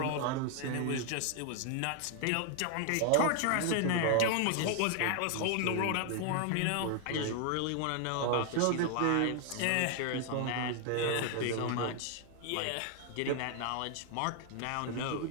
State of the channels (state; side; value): different; both; correlation 0.00